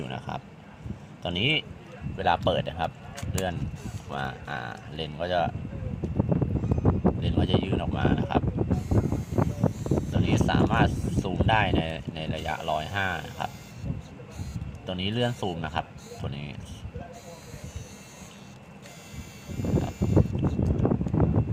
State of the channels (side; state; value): both; identical; correlation 1.00